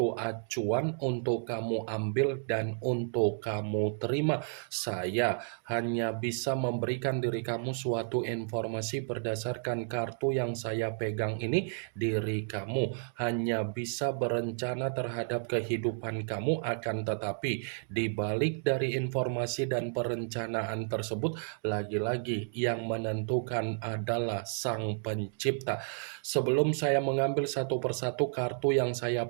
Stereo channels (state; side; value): silent; left; digital silence